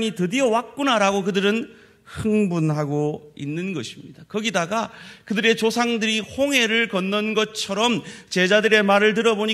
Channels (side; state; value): both; identical; correlation 1.00